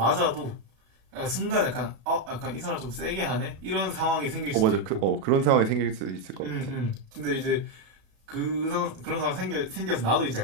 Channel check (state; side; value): late; left; 37 ms